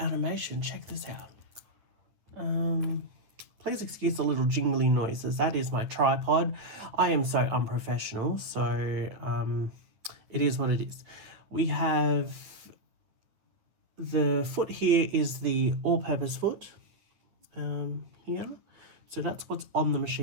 Check this out. Please excuse the little jingly noises. That is my tripod. I am so unprofessional, so it is what it is. We have the foot here is the all-purpose foot here. So that's what's on the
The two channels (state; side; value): late; left; 9.3 ms